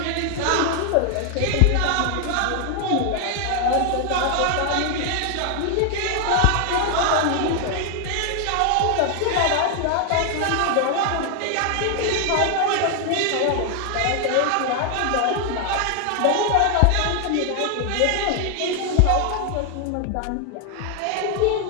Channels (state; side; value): different; both; correlation 0.00